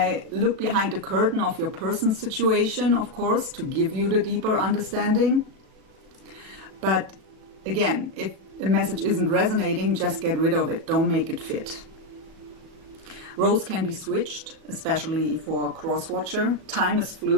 look behind the curtain of your person's situation, of course, to give you the deeper understanding. But again, if the message isn't resonating, just get rid of it. Don't make it fit. Roles can be switched, especially for a cross-watcher. Time is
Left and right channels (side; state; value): left; late; 37 ms